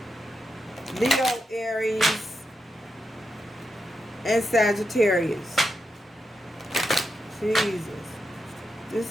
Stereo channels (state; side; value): normal; both; correlation 0.86